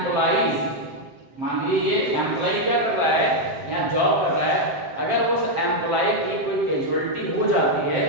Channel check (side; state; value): left; late; 7.6 ms